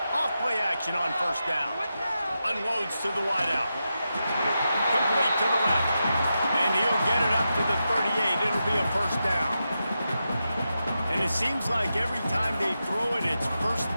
Off-play action on first down. Unloads to the wideout. Complete to the left. And he'll get it up to the 38. It'll be a first down. And it seems like every time they throw it, it's first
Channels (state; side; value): inverted; both; correlation -0.89